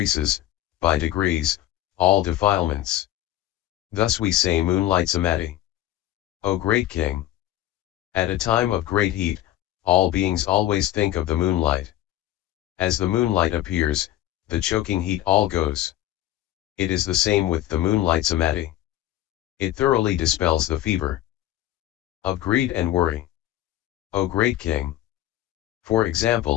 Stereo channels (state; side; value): quieter; right; 13.6 dB